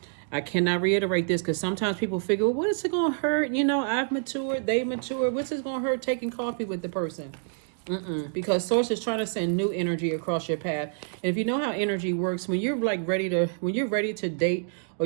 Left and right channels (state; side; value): silent; left; digital silence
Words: I cannot reiterate this because sometimes people figure, well, what is it going to hurt? You know, I've matured, they matured. What's it going to hurt taking coffee with the person? Because Source is trying to send new energy across your path. And if you know how energy works, when you're ready to date, or